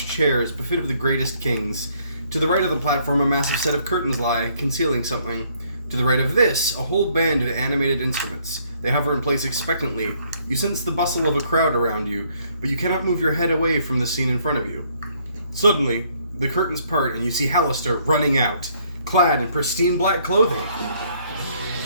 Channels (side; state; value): both; inverted; correlation -0.66